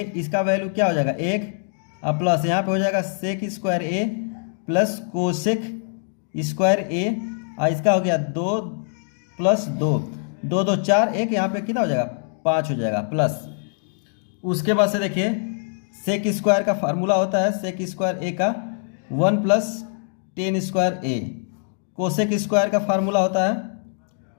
इसका वैल्यू क्या हो जाएगा 1 और प्लस यहाँ पे हो जाएगा सेक square A plus cosec square ए, और इसका हो गया 2 प्लस 2 2 2 4 1, यहाँ पे कितना हो जाएगा 5 हो जाएगा प्लस। उसके बाद से देखिए सेक स्क्वायर का फार्मूला होता है सेक स्क्वायर ए का 1 प्लस टेन स्क्वायर ए, कोसेक स्क्वायर का फार्मूला होता है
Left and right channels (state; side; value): silent; right; digital silence